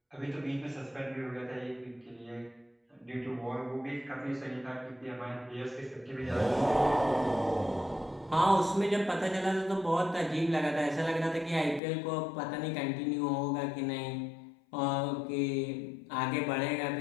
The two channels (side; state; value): right; drops out; at 11.8 s